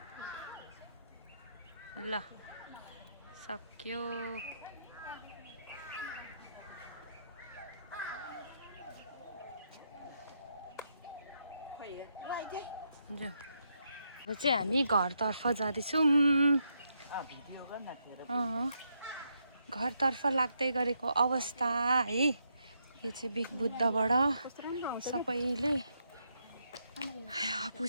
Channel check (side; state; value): both; inverted; correlation -0.79